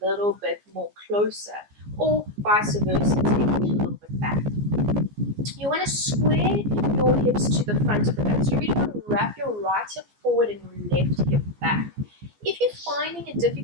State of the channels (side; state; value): left; late; 14 ms